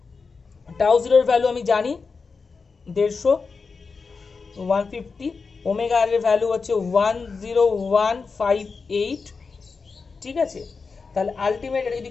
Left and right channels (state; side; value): quieter; right; 4.7 dB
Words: টাউ জিরোর ভ্যালু আমি জানি 150, 150, ওমেগা আর এর ভ্যালু হচ্ছে 10158, ঠিক আছে। তাহলে আলটিমেট এটা যদি